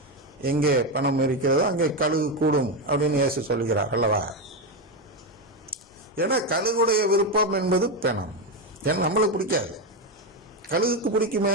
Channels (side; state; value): both; normal; correlation 0.10